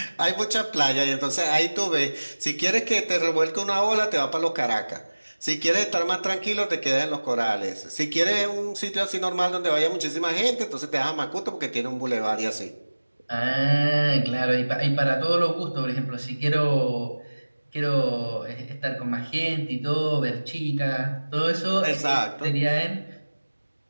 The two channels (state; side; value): inverted; both; correlation -1.00